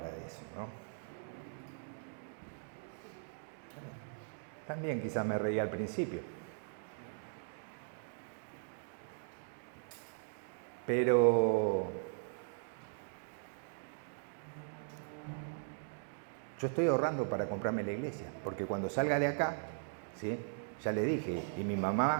eso, ¿no? También quizás me reía al principio. Pero yo estoy ahorrando para comprarme la iglesia, porque cuando salga de acá, ¿sí? Ya le dije, y mi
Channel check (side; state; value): left; silent; digital silence